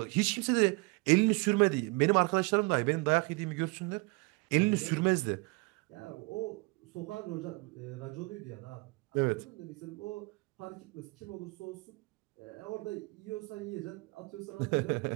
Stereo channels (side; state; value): left; quieter; 27.6 dB